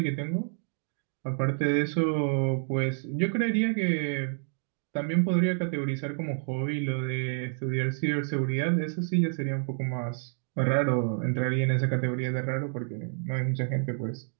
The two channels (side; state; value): left; silent; 59 dB below the other